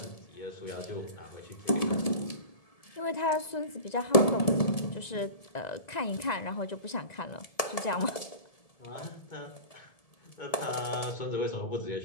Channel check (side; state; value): right; late; 1.7 ms